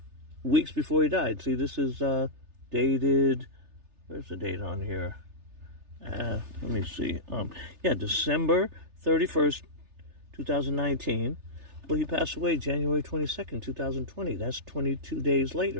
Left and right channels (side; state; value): left; late; 3.3 ms